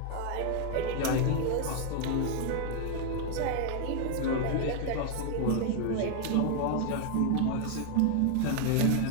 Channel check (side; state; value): both; different; correlation 0.00